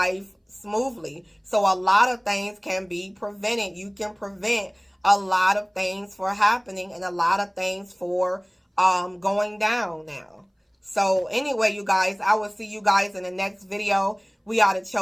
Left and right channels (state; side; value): identical; both; correlation 1.00